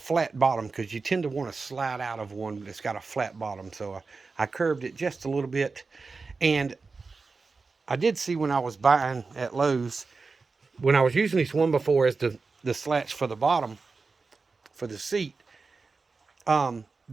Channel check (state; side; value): quieter; left; 4.3 dB